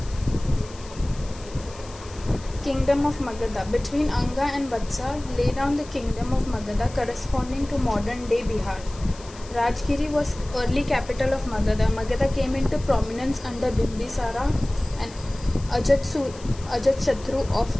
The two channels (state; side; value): noise; left; hiss, 20 dB below the sound